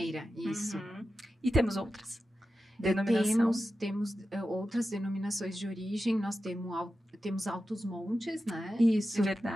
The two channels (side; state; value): both; normal; correlation 0.92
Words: isso. E temos outras. Temos outras denominações de origem, nós temos Altos Montes, né? Isso. É